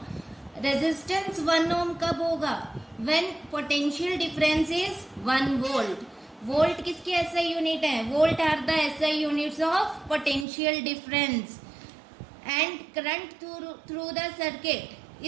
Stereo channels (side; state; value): left; drops out; at 10.5 s